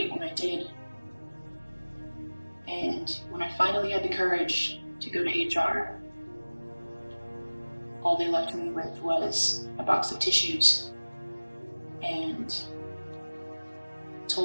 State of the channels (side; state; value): both; inverted; correlation -1.00